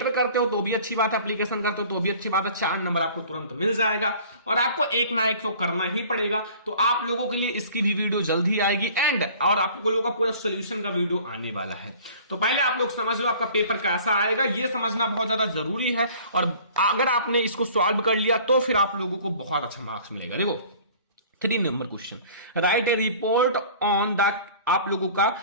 करते हो तो भी अच्छी बात है, एप्लीकेशन करते हो तो भी अच्छी बात है। 4 नंबर आपको तुरंत मिल जाएगा और आपको एक ना एक तो करना ही पड़ेगा। तो आप लोगों के लिए इसकी भी वीडियो जल्दी आएगी और आप लोगों का पूरा सोल्यूशन का वीडियो आने वाला है। तो पहले आप लोग समझ लो आपका पेपर कैसा आएगा, ये समझना बहुत ज्यादा जरूरी है। और अगर आपने इसको सॉल्व कर लिया तो फिर आप लोगों को बहुत अच्छा मार्क्स मिलेगा। देखो 3 number question, right A report on the आप लोगों का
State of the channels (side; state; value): both; inverted; correlation -0.48